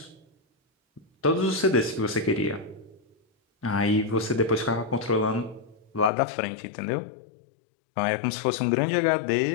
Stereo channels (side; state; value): right; drops out; at 6.1 s